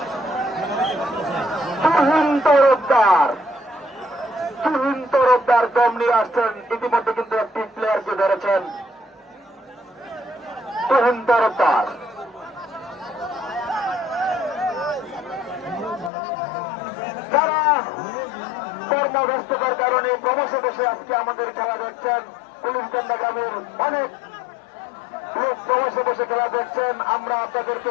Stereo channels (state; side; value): drops out; right; at 16.1 s